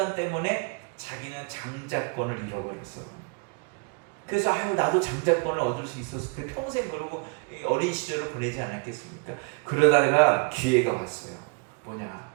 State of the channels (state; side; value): quieter; left; 33.5 dB